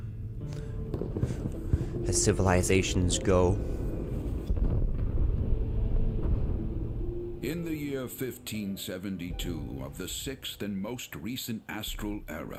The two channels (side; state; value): both; identical; correlation 1.00